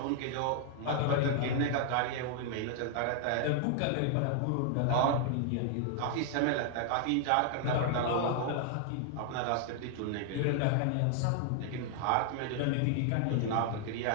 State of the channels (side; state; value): both; different; correlation 0.00